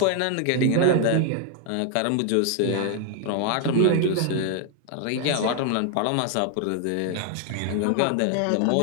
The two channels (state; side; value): different; both; correlation 0.00